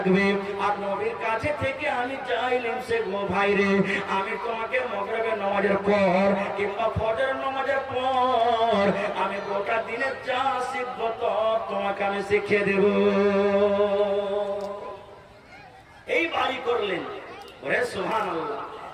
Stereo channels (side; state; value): both; identical; correlation 1.00